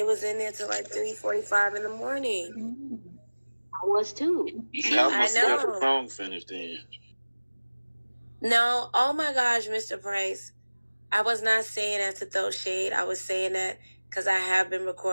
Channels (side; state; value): both; inverted; correlation -1.00